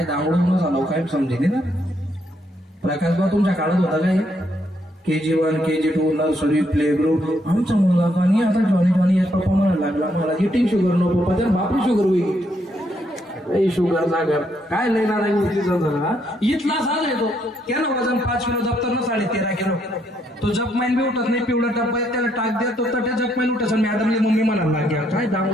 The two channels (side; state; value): both; normal; correlation 0.74